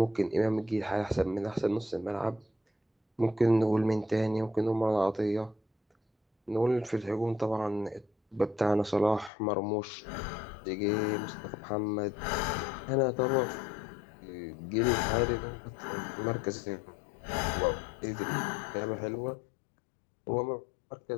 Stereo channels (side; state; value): right; drops out; at 9.3 s